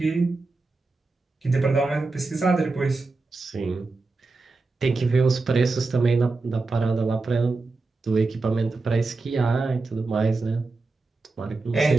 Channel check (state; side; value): quieter; left; 3.7 dB